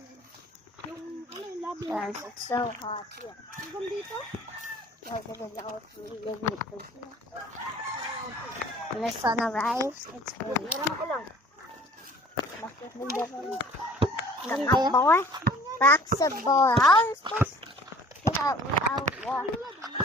Yung, yung labi. Guys, it's so hot here. Hanggang dito? Like it is out really when the sun arrives, it's really boy. Basketball. How are you supposed to get out without water?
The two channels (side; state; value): both; normal; correlation 0.50